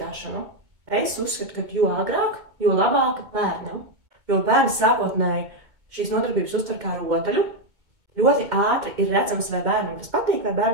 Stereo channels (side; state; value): left; late; 2.2 ms